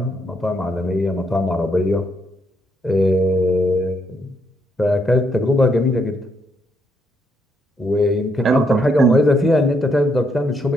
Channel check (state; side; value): normal; both; correlation 0.75